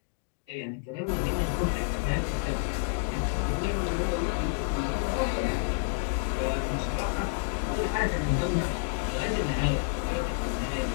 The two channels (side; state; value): right; quieter; 33.0 dB